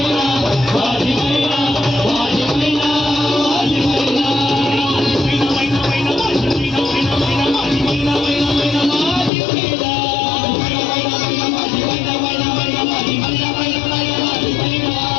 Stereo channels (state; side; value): drops out; right; at 9.3 s